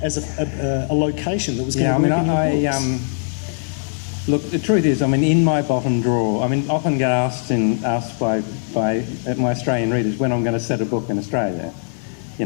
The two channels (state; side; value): silent; right; digital silence